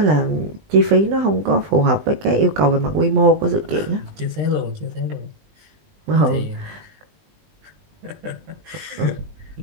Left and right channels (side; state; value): left; late; 20 ms